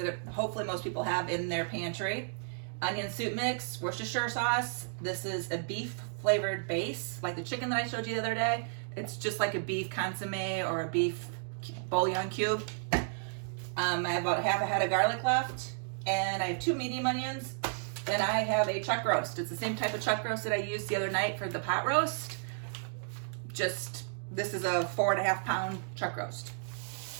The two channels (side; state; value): left; silent; digital silence